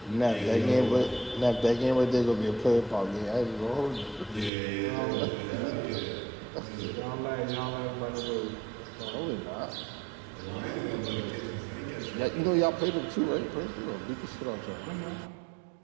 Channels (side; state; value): left; drops out; at 4.5 s